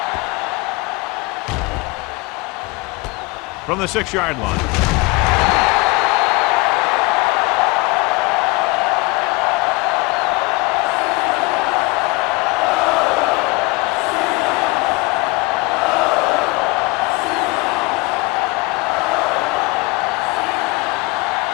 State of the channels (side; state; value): right; quieter; 24.9 dB